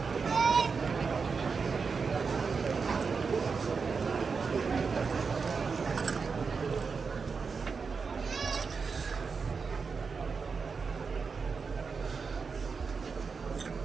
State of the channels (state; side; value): quieter; left; 5.2 dB